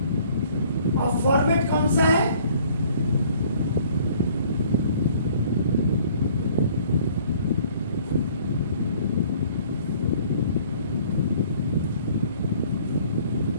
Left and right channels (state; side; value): inverted; both; correlation -0.56